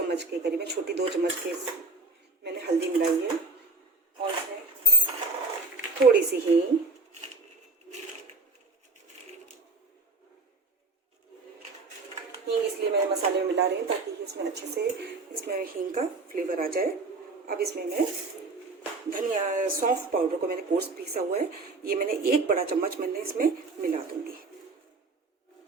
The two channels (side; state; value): left; quieter; 3.5 dB